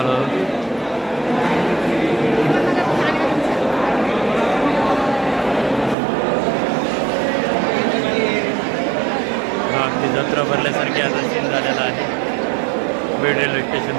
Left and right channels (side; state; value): left; drops out; at 6.0 s